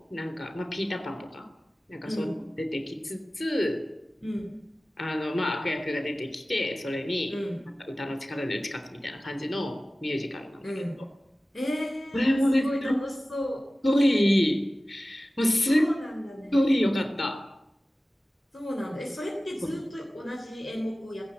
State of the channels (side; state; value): both; normal; correlation 0.97